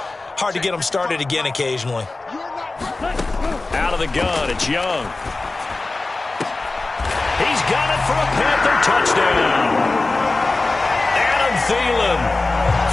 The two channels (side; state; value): right; quieter; 3.3 dB